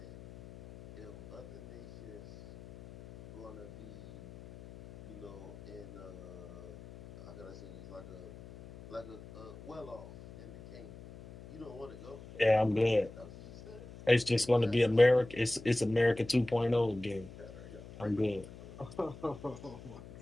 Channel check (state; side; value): noise; left; hum, 16 dB below the sound